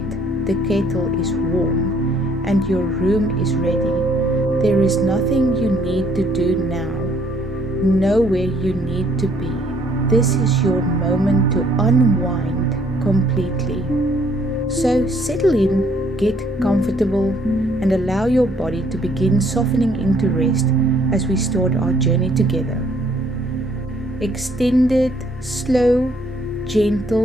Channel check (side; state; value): both; normal; correlation 0.64